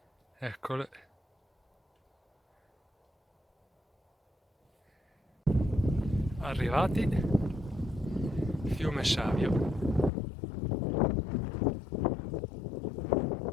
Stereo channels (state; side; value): drops out; right; at 10.1 s